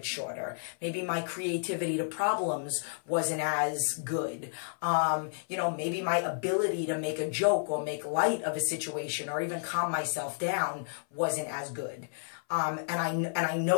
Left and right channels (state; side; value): silent; right; 57 dB below the other